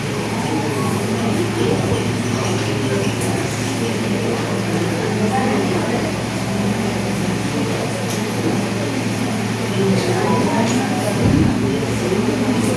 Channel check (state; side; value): identical; both; correlation 1.00